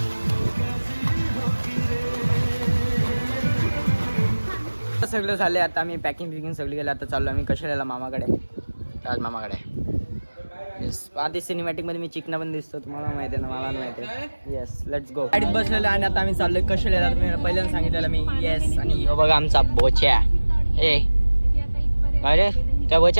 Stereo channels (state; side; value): inverted; both; correlation -1.00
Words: सगळं झाले. आता आम्ही पॅकिंग सगळी केली. आता चाललो आम्ही कशाला मामाकडे. राज मामाकडे. येस आधी सिनेमॅटिक मध्ये मी चिकना पण दिसतो. तुम्हाला माहिती आहे ना मला माहिती आहे. Yes let's go. गाडीत बसलेलं आणि आता आम्ही चाललोय कशाला. तुम्ही पहिल्यांदा सांगितलेलं मी. येस आणि बघा आमचा बोच्या. ए काय रे त्या